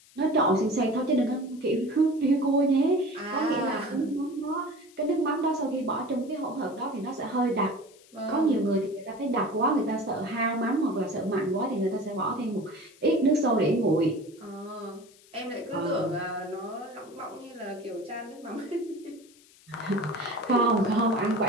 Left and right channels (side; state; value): left; noise; hiss, 26 dB below the sound